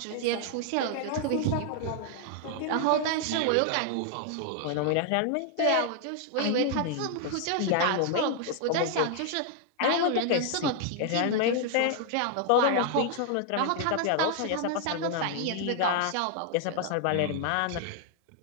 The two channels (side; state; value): both; different; correlation 0.00